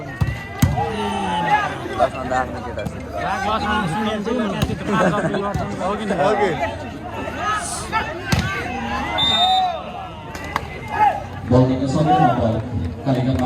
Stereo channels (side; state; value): both; identical; correlation 1.00